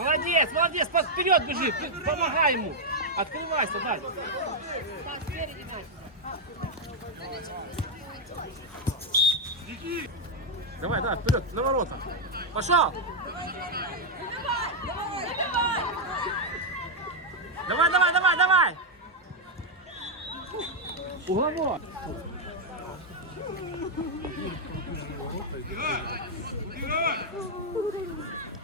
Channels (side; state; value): both; normal; correlation 0.00